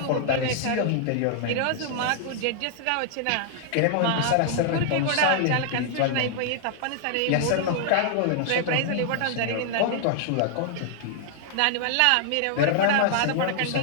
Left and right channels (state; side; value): different; both; correlation 0.00